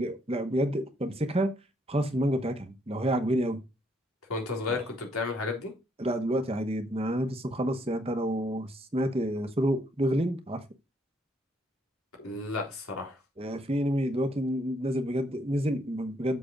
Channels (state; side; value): normal; both; correlation 0.71